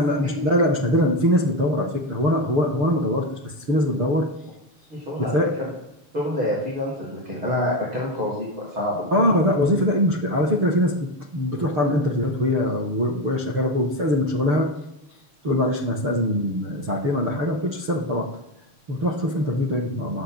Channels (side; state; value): left; late; 6.8 ms